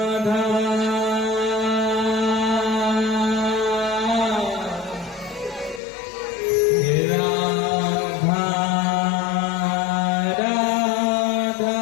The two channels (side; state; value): right; drops out; at 5.8 s